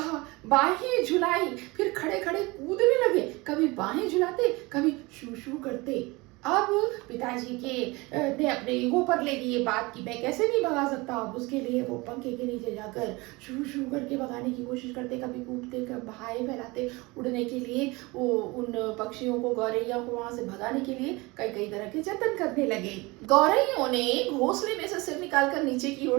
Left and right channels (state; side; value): quieter; left; 23.9 dB